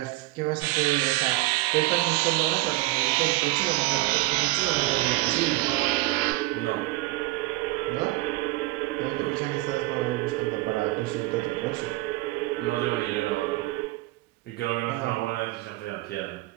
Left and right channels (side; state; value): left; quieter; 19.5 dB